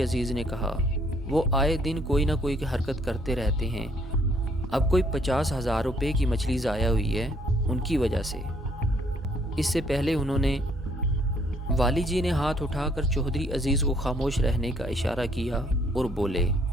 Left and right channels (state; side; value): normal; both; correlation 0.66